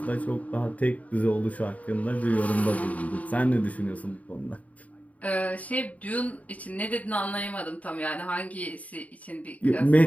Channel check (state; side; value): late; right; 0.070 ms